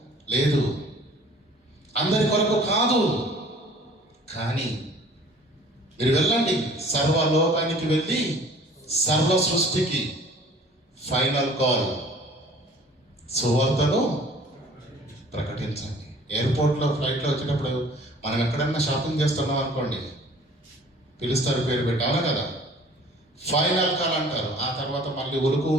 లేదు. అందరి కొరకు కాదు, కానీ మీరు వెళ్ళండి, సర్వలోకానికి వెళ్ళి సర్వ సృష్టికి ఫైనల్ కాల్, సువార్తను ప్రకటించండి. ఎయిర్పోర్ట్లో ఫ్లైట్లో వచ్చేటప్పుడు మనం ఎక్కడన్నా షాపింగ్ చేస్తున్నాం అనుకోండి, పిలుస్తారు పేరు పెట్టి, అవునా కదా? ఫైనల్ కాల్ అంటారు. ఆ తర్వాత మళ్ళీ ఉలుకు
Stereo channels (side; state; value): both; normal; correlation 0.50